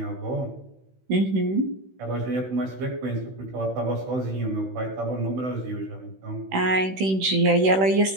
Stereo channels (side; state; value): left; late; 16 ms